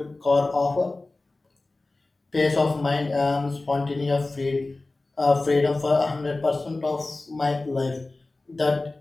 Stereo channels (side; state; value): right; quieter; 3.1 dB